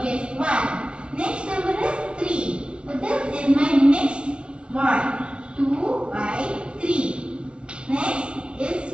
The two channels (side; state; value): left; late; 0.056 ms